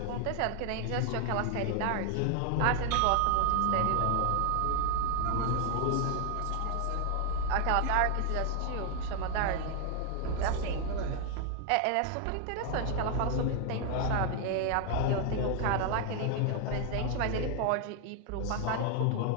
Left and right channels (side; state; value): both; different; correlation 0.00